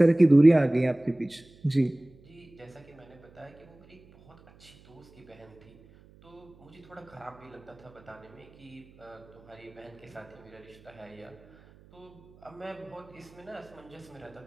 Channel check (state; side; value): noise; right; hum, 25 dB below the sound